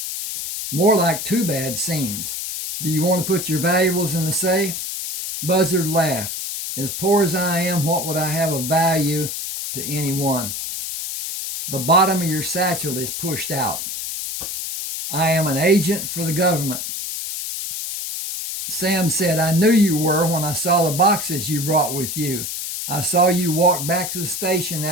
More like two bad scenes. Do you want to put your valuables in the safe? Buzzard laughed. As poor as I am, what would I have of value to anyone? The bottom of your satchel is pushed out. I am an agent for the government. Sam said, I knew you were when I saw the boxes you brought with you. I saw you walk back to the station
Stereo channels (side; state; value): left; noise; hiss, 5 dB below the sound